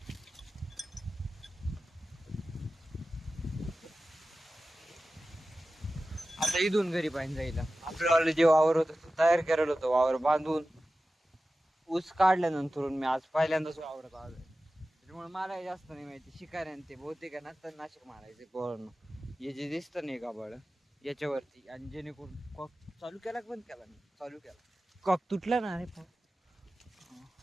आता इथून घरी पाणी जाईल. आपल्याला जे वावर होतं तो तयार करायला होतं, वावर बांधून ऊस काढल्यानंतर मी आज पहिल्यांदाच वावरत आलोय. त्याच्यामुळे मला जास्त नाही माहिती. शिकाऱ्यान ते बहुतेक नंतर नाशिक मारायचे पोरांनो. हे जे दिसतं नाही का बळ याच्यावरती, आणि जेणेकरून कॉक चालू केला बंद केला, मी चालू केला कॉक तुटला ना. अरे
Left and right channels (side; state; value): both; normal; correlation 0.95